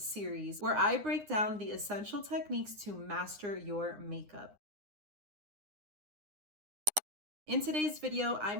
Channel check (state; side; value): late; left; 9.8 ms